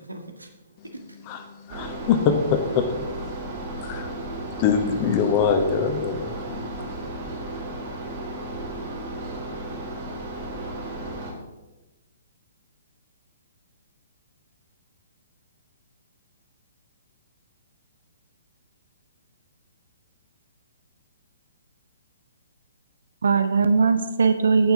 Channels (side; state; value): both; inverted; correlation -0.49